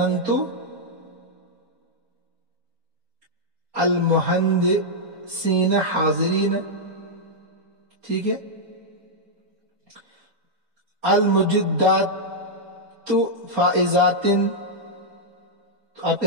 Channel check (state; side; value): late; left; 4.3 ms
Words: المہندسین حاضرین. ٹھیک ہے. المجدات فائزات، تو آپ